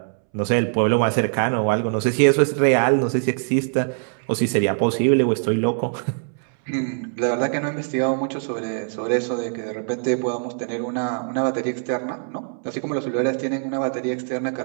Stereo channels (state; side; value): silent; left; 64 dB below the other